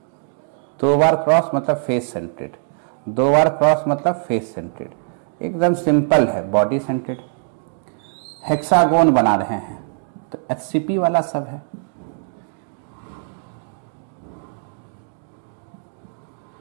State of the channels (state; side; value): silent; left; digital silence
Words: दो बार क्रॉस मतलब फेस सेंटेड, 2 बार क्रॉस मतलब फेस सेंटेड। एकदम सिंपल है, बॉडी सेंटेड। हेक्सागोन बना रहे हैं तो HCP वाला सब है।